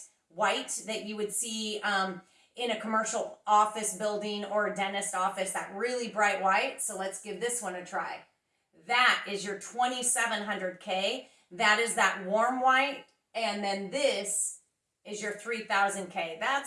white that you would see in a commercial office building or a dentist office, that really bright white. So let's give this one a try. That is your 2700 K. That is that warm white. And then this is your 3000 K.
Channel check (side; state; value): both; identical; correlation 1.00